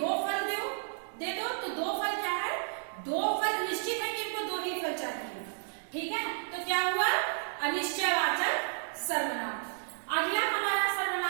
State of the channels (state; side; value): silent; left; digital silence